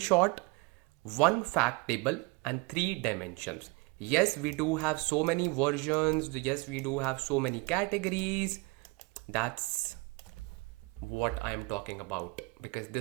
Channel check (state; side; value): quieter; left; 27.2 dB